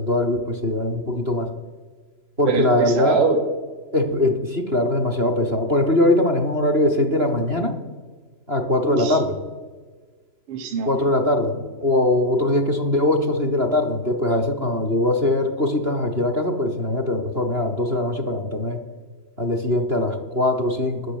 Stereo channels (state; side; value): late; left; 2.9 ms